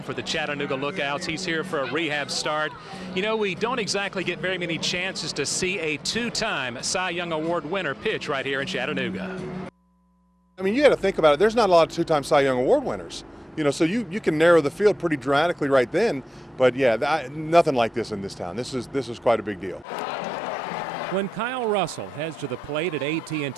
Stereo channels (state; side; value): normal; both; correlation 0.93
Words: for the Chattanooga Lookouts. He's here for a rehab start. You know, we don't exactly get very many chances to see a 2-time Cy Young Award winner pitch right here in Chattanooga. I mean, you got to think about it. There's not a lot of 2-time Cy Young Award winners. You know, so you can narrow the field pretty dramatically right then. But yeah, nothing like this in this town. This is quite a big deal. When Kyle Russell heads to the plate at